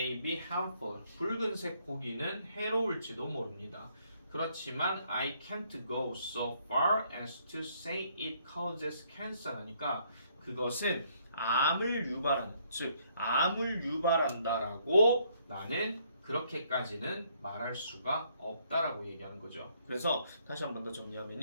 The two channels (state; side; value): inverted; both; correlation -0.68